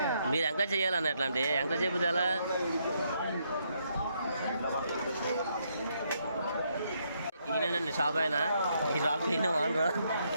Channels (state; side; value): inverted; both; correlation -0.75